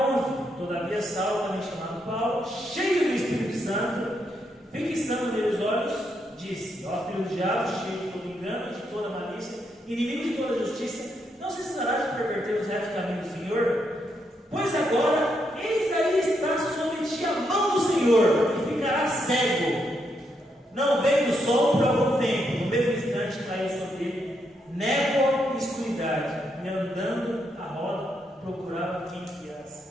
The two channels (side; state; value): both; normal; correlation 0.79